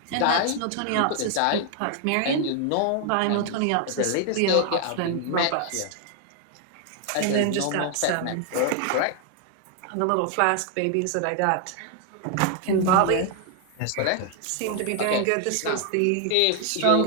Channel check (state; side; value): different; both; correlation 0.00